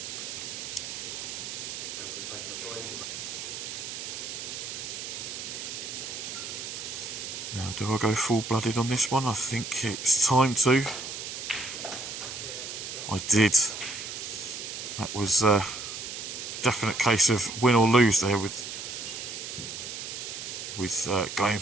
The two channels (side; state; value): right; noise; hiss, 7 dB below the sound